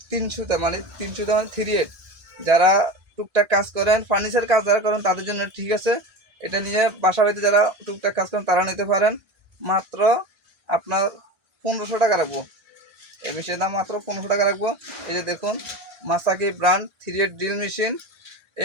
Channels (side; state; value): left; late; 1.8 ms